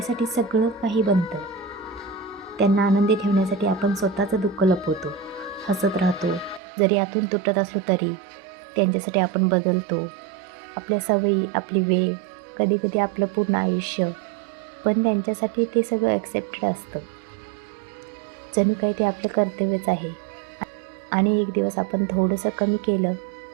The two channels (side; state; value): left; drops out; at 6.6 s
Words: सगळं काही बनतं. त्यांना आनंदी ठेवण्यासाठी आपण स्वतःचं दुःख लपवतो, हसत राहतो. जरी आतून तुटत असलो तरी त्यांच्यासाठी आपण बदलतो. आपल्या सवयी, आपली वेळ, कधीकधी आपलं पूर्ण आयुष्य, पण त्यांच्यासाठी ते सगळं ॲक्सेप्टेड असतं. जणू काही ते आपलं कर्तव्यच आहे. आणि एक दिवस आपण थोडंसं कमी केलं